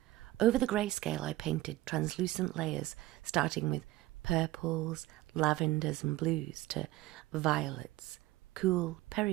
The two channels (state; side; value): quieter; left; 16.9 dB